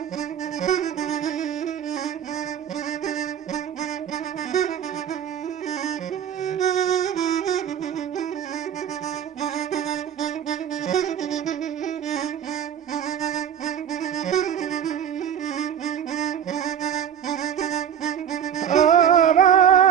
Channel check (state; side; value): quieter; left; 9.0 dB